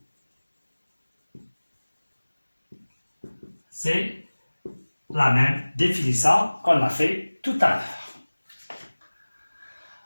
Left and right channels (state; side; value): inverted; both; correlation -1.00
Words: C'est la même définition qu'on a fait tout à l'heure.